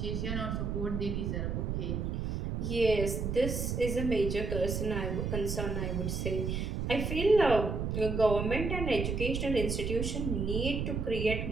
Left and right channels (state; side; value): noise; right; rumble, 2 dB below the sound